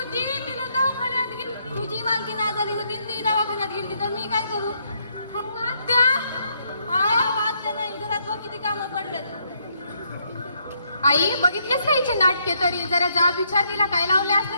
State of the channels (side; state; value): both; inverted; correlation -0.73